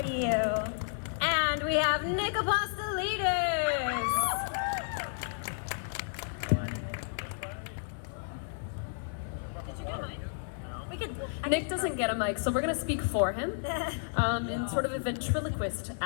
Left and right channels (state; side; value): silent; right; 56 dB below the other